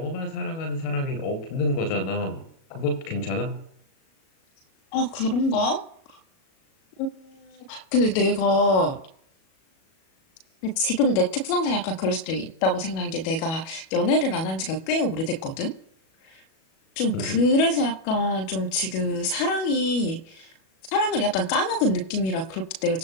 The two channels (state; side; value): late; right; 37 ms